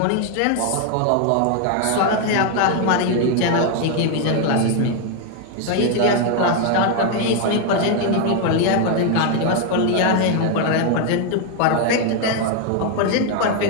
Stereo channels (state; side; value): different; both; correlation 0.00